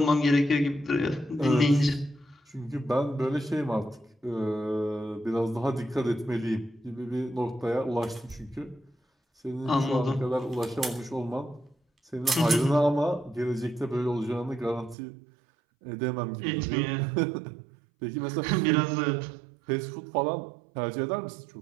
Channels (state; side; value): drops out; left; at 15.0 s